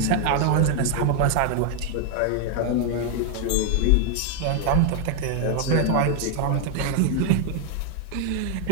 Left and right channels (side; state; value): both; different; correlation 0.00